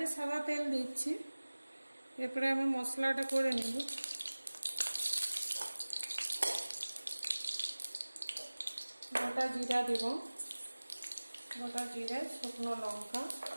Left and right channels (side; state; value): both; inverted; correlation -1.00